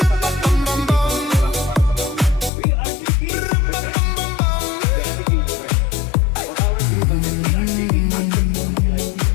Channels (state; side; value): drops out; right; at 2.5 s